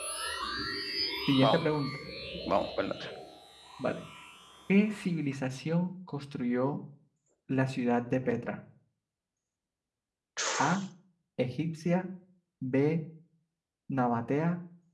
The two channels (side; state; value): both; identical; correlation 1.00